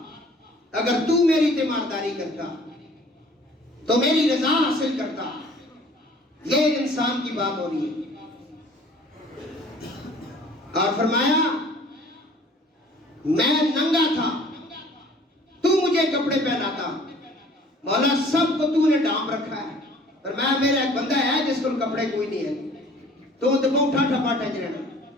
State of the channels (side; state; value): both; normal; correlation 0.52